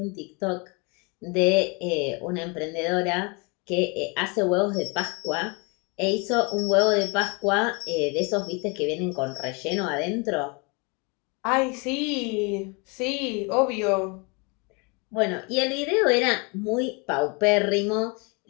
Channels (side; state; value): right; quieter; 31.0 dB